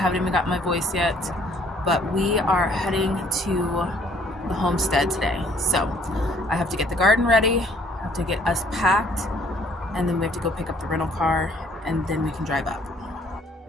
even got my voice yet, but we are heading to the homestead today. So I have to get the garden ready, I have to get us packed, and then we have to go pick up the rental car, and then we can drive up.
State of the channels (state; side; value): normal; both; correlation 0.61